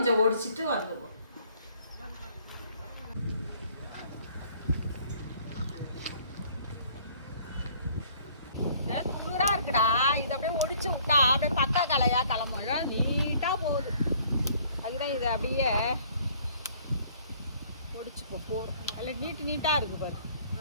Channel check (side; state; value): both; inverted; correlation -0.57